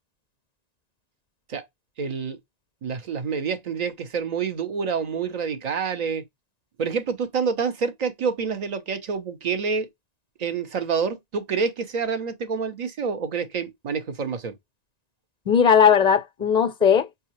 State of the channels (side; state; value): left; late; 1.9 ms